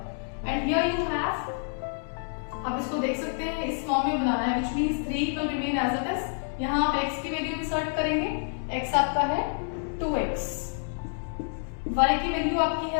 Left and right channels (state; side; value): silent; right; 59 dB below the other